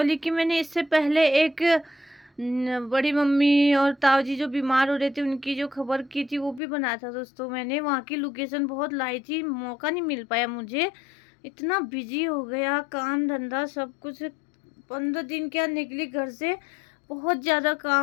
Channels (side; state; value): right; drops out; at 6.6 s